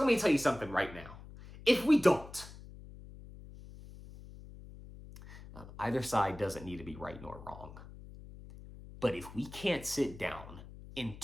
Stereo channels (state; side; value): noise; left; hum, 16 dB below the sound